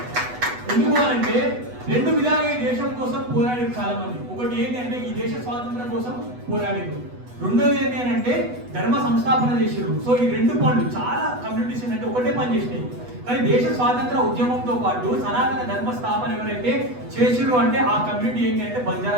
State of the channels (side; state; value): left; late; 8.1 ms